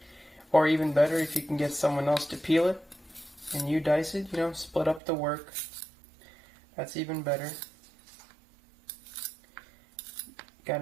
Or even better if you can get someone else to peel it and you dice it, split up the work. That's even better. Got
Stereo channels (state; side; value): drops out; left; at 5.0 s